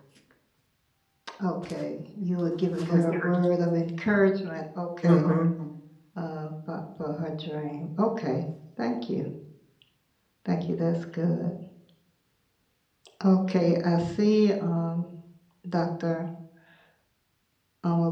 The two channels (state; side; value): identical; both; correlation 1.00